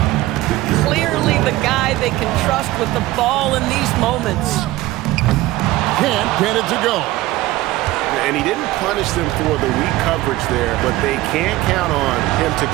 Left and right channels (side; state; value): left; quieter; 17.5 dB